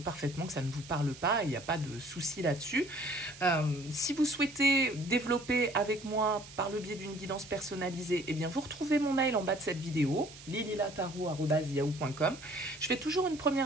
que ça ne vous parle pas, il n'y a pas de souci là-dessus. Si vous souhaitez développer avec moi par le biais d'une guidance personnalisée, eh bien vous retrouvez mon mail en bas de cette vidéo, lililataro@yahoo.com. Je fais toujours une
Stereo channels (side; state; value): right; noise; hiss, 17 dB below the sound